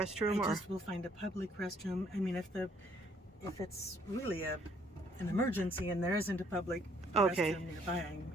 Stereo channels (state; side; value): normal; both; correlation 0.65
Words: I just will find a public restroom. I mean, if it's really an emergency and there isn't a public restroom nearby, I'm